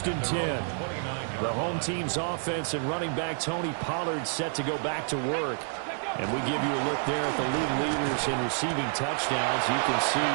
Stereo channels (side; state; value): left; silent; 59 dB below the other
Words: and 10. The home team's offense and running back Tony Pollard set to go back to work. And we give you a look there at the league leaders in receiving touchdowns. You can see